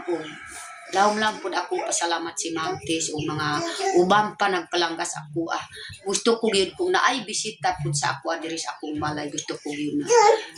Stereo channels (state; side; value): identical; both; correlation 1.00